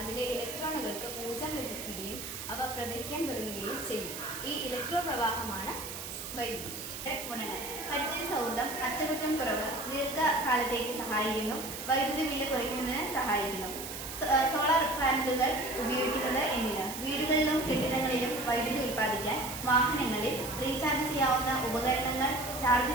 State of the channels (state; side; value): noise; right; hiss, 8 dB below the sound